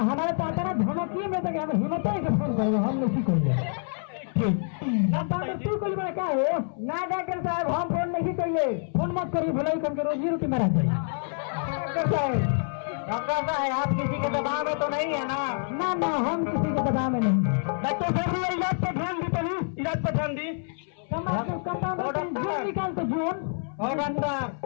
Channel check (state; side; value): silent; right; 60 dB below the other